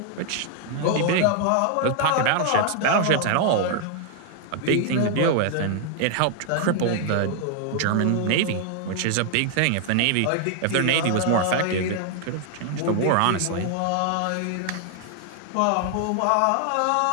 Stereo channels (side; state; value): both; different; correlation 0.00